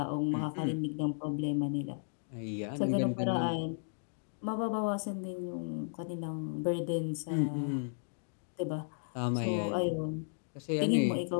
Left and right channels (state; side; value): silent; right; digital silence